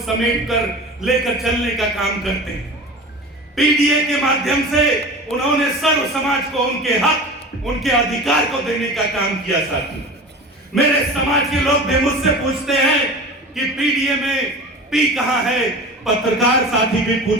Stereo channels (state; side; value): normal; both; correlation 0.34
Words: समेट कर लेकर चलने का काम करते हैं। पीडीए के माध्यम से उन्होंने सर्व समाज को उनके हक, उनके अधिकार को देने का काम किया। साथियों, मेरे समाज के लोग भी मुझसे पूछते हैं कि पीडीए में पी कहां है, पत्रकार साथी भी